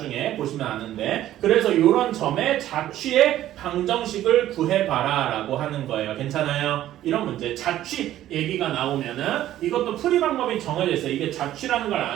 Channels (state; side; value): quieter; left; 13.1 dB